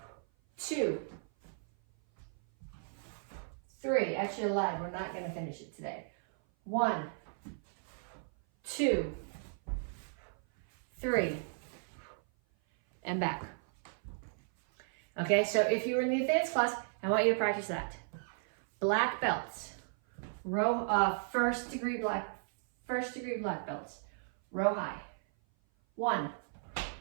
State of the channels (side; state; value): left; silent; 54 dB below the other